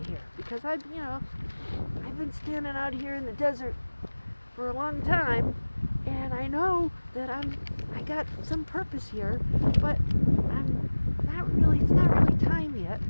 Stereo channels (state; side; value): inverted; both; correlation -1.00